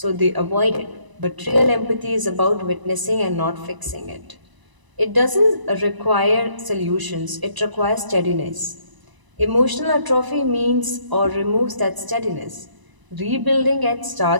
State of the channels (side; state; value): left; late; 1.0 ms